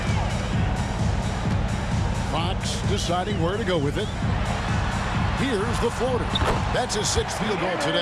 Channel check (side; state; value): both; identical; correlation 1.00